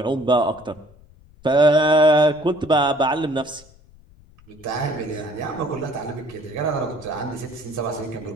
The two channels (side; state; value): left; noise; rumble, 26 dB below the sound